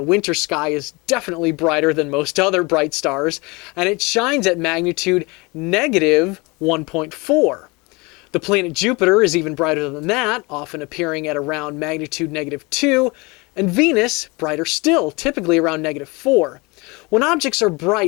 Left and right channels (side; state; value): right; quieter; 26.2 dB